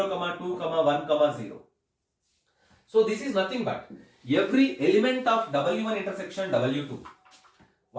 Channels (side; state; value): both; identical; correlation 1.00